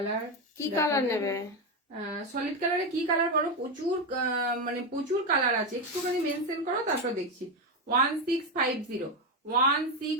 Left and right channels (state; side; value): normal; both; correlation 0.10